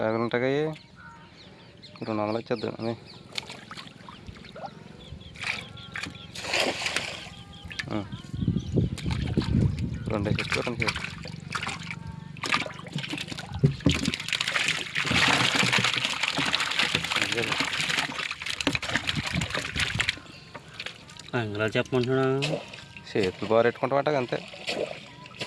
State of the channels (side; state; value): both; identical; correlation 1.00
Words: ఉంటాయి, 200 వచ్చేద్దాం అది. రెండు చెట్టు 2 చేపలు. అంగళ చెప్పమంటున్నా. చేతులు బాగా పెట్టుకుంటామంట అంతే.